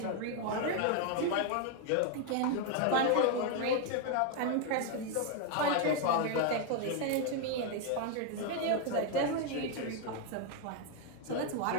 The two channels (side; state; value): both; different; correlation 0.01